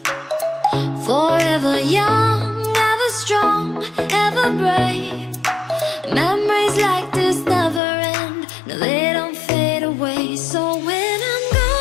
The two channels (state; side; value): drops out; right; at 7.8 s